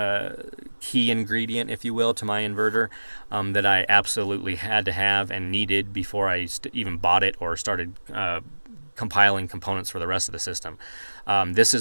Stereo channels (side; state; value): both; inverted; correlation -1.00